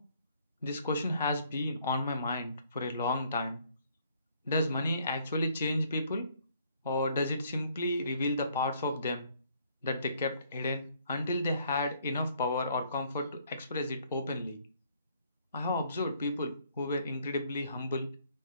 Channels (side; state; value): both; inverted; correlation -0.64